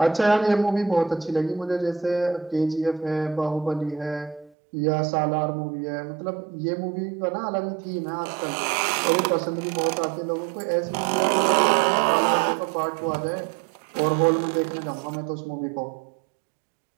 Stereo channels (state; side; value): drops out; left; at 4.5 s